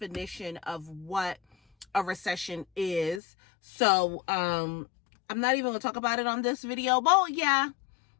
of what a recession is. So, I'm not even gonna talk about it on this video. Well, yeah,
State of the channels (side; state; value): right; drops out; at 3.2 s